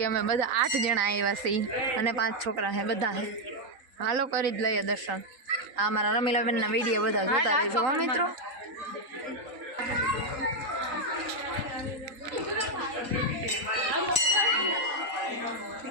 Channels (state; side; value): late; left; 3.9 ms